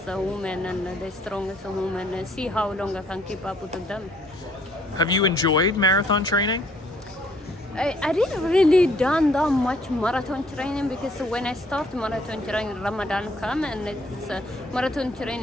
woman and the strongest woman and see how long I can keep up with them. Have you enjoyed marathon training? I didn't really done that much marathon training because when I start marathon training, Ramadan come, and it's marathon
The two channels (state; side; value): normal; both; correlation 0.64